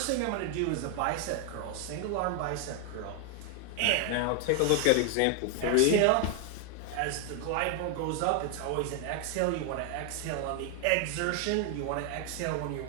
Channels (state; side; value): different; both; correlation 0.00